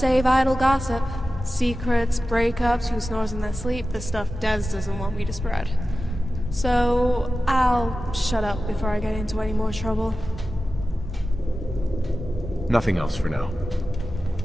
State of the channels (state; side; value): normal; both; correlation 0.94